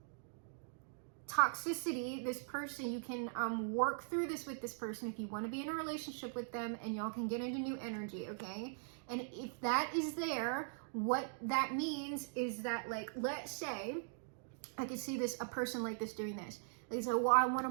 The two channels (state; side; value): silent; left; digital silence